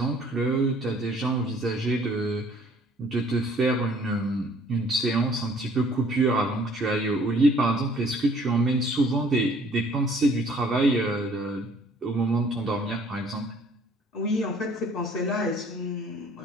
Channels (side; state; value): both; normal; correlation 0.57